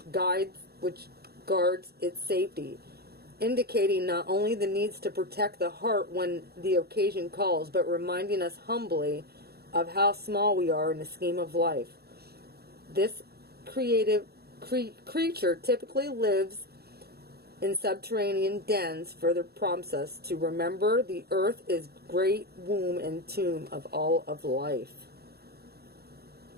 guards its safety, indicating not only the needs to protect the heart when the occasion calls, but reminding us humbly of how small we are in the scheme of life. This creative creature typically lives in subterranean dens, further prompts us to remember the earth is great womb and tomb of all of life.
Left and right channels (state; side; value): late; left; 0.46 ms